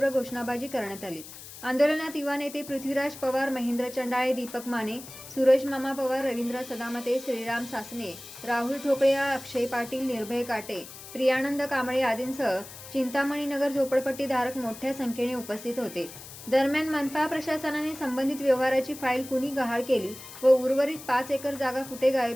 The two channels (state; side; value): noise; left; hiss, 15 dB below the sound